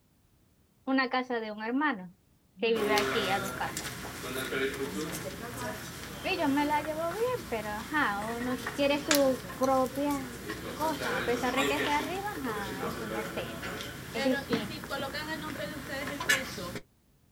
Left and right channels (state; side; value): identical; both; correlation 1.00